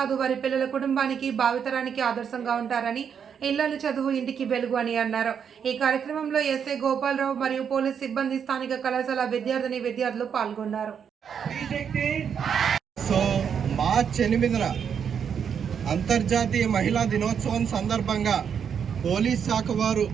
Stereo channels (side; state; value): left; quieter; 7.5 dB